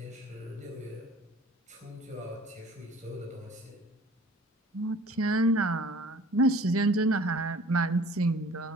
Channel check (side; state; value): both; normal; correlation 0.50